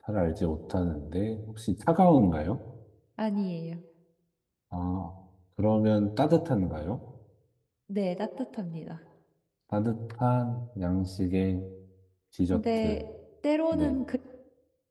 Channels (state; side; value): identical; both; correlation 1.00